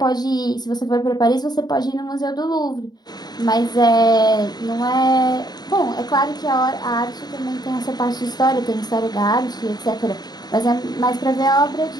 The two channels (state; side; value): late; right; 0.20 ms